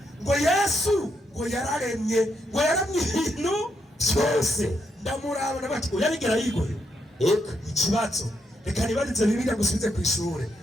ngo Yesu ngo yararemye ngo yaramye ibintu byose ndamuraba nabati uyabigera yigoye ikibazo reka nibarize Bibiliya gusubize ku ishure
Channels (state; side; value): normal; both; correlation 0.79